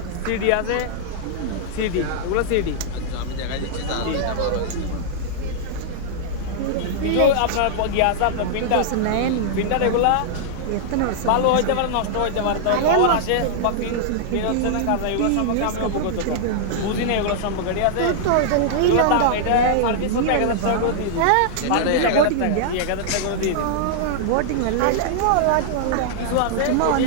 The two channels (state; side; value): different; both; correlation -0.01